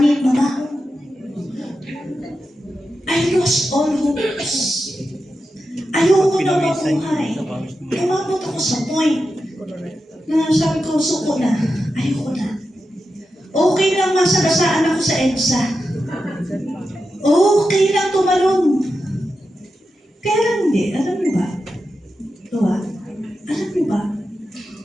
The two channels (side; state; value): both; normal; correlation 0.90